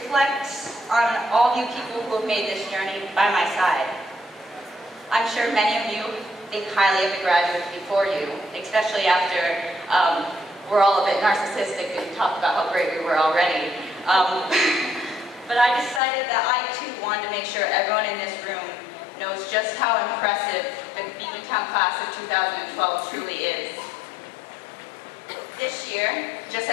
on all of you people who have made this journey by my side. I'm sure many of you think highly of the graduates before you, especially after we're all a bit narcissistic and talk about how great we were already. But I decided that I too wanted to make sure everyone in this room knows just how impressive the Beekmantown class of 2012 truly is. This year, just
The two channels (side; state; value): right; drops out; at 16.0 s